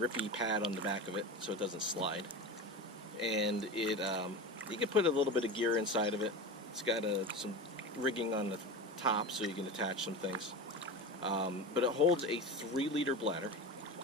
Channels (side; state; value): both; normal; correlation 0.27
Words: pad on the back of it so it doesn't slide. And it you can put a little bit of gear inside of it. It's got some rigging on the top so you can attach some things. But it holds a 3-liter bladder,